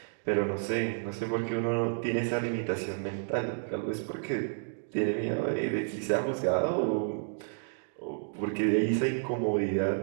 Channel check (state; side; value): silent; left; digital silence